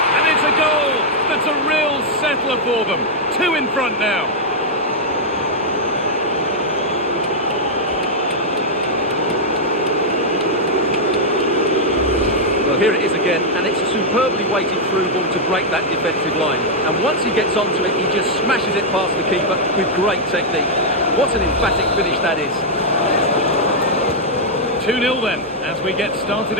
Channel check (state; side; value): normal; both; correlation -0.03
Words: and it's a goal. That's a real settler for them. 2 in front now. Well, here it is again, and it's a superbly weighted through ball to break that defensive line. And once he gets onto it, he just smashes it past the keeper with great technique. What an emphatic finish that is. 2-0 then, as we get started